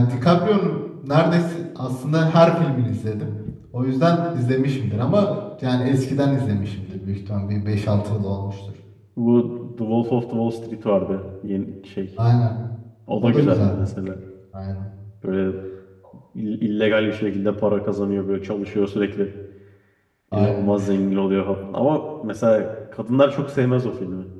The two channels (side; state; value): both; identical; correlation 1.00